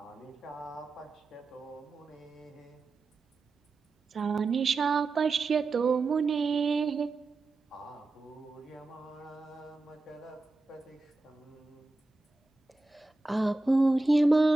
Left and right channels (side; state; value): left; quieter; 3.2 dB